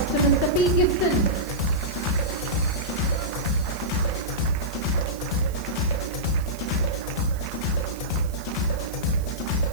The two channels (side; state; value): right; noise; hiss, 19 dB below the sound